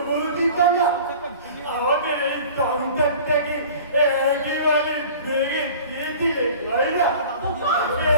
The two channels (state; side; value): inverted; both; correlation -0.43